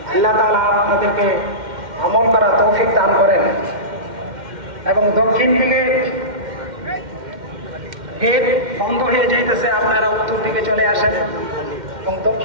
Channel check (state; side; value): late; left; 2.1 ms